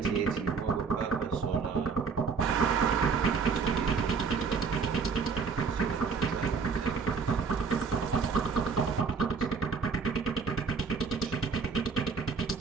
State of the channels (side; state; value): left; quieter; 5.4 dB